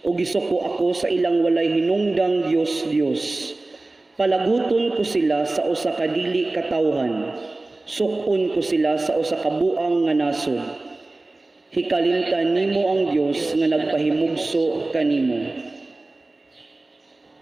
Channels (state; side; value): quieter; left; 3.0 dB